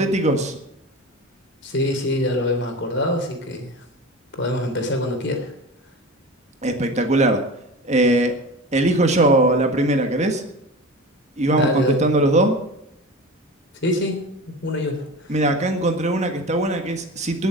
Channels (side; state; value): both; normal; correlation 0.32